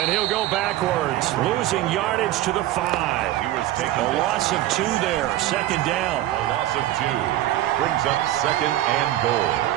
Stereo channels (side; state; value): left; quieter; 14.2 dB